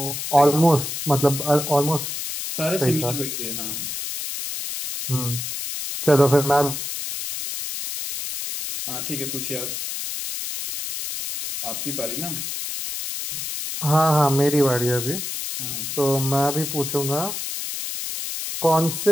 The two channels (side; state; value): left; noise; hiss, 5 dB below the sound